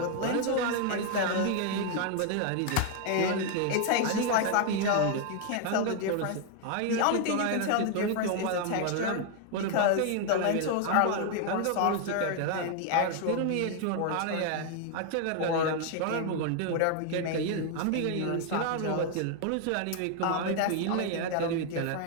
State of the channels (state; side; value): different; both; correlation 0.00